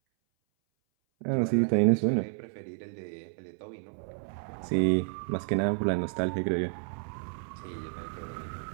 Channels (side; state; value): left; silent; 57 dB below the other